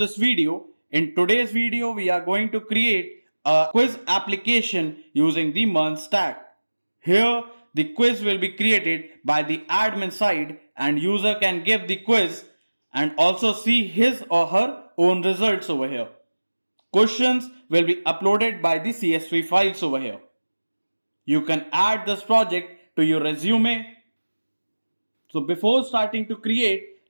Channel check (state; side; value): inverted; both; correlation -1.00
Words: video. In today's video, we are going to create a quiz application using the MERN Stack. Here, the quiz will be created by the admin side and user can give the quiz and also see his or her own results over here. Questions will be uploaded by the CSV files over here. You can add this project to your resume. So before starting to create,